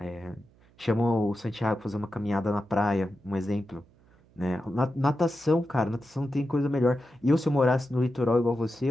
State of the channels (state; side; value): noise; right; hum, 30 dB below the sound